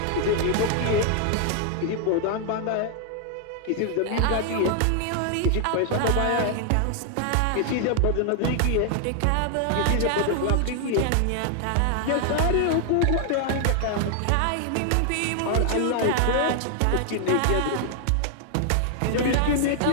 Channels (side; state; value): both; different; correlation 0.00